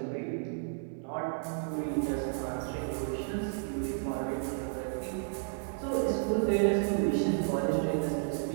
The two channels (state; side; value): silent; left; digital silence